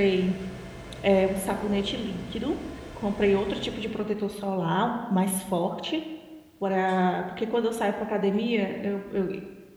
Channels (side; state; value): both; identical; correlation 1.00